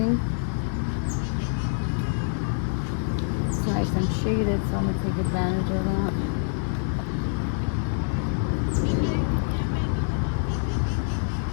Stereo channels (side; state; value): right; silent; digital silence